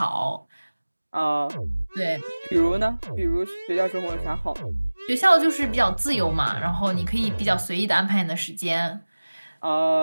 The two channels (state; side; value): inverted; both; correlation -1.00